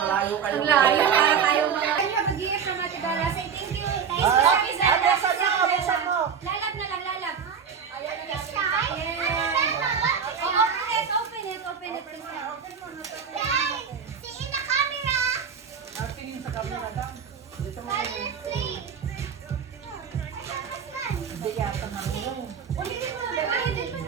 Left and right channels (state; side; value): quieter; left; 6.9 dB